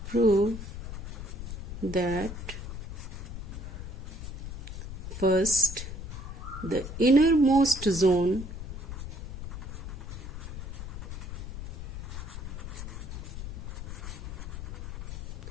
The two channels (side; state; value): left; noise; rumble, 7 dB below the sound